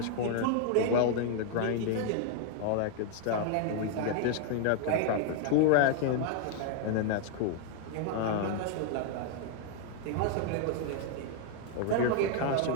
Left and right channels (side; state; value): both; different; correlation 0.00